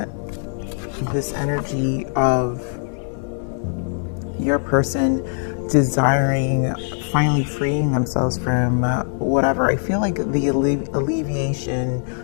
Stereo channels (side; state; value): right; silent; 65 dB below the other